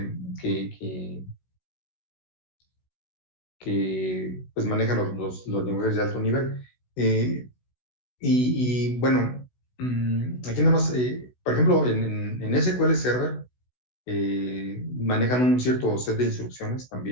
que pues manejan los lenguajes de alto nivel. Eh, bueno, aquí nada más, por ejemplo, en SQL Server manejan un cierto set de instrucciones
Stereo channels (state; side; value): late; right; 16 ms